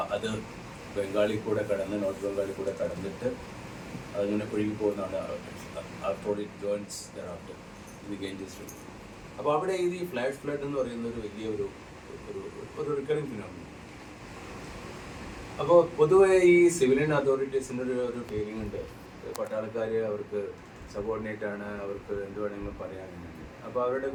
അത് ബംഗാളിൽ കൂടെ കടന്ന് നോർത്ത് ബംഗാളിൽ കൂടെ കടന്നിട്ട് അതിങ്ങനെ ഒഴുകി പോകുന്നതാണ്. After it joins thereafter in the Ganges river. അപ്പോൾ അവിടെ ഈ ഫ്ലാഷ് ഫ്ലഡ് എന്ന് പറയുന്ന ഒരു വലിയ ഒരു റിക്കറിങ് ഫിനോമിനൻ. അപ്പോൾ പൊതുവെ ഈ സിവിലിയൻ അതോറിറ്റീസിൻ്റെ ഒരു ഫീലിംഗ് ഉണ്ട്, പട്ടാളക്കാർ അവർക്ക് സബോർഡിനേറ്റ് ആണ്, അവർക്ക് എന്ത് വേണമെങ്കിലും പറയാനുണ്ട്. അപ്പോൾ അവരുടെ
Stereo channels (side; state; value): both; identical; correlation 1.00